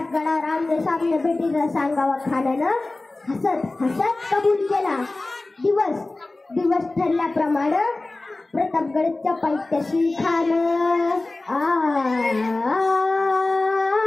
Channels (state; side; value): quieter; right; 3.0 dB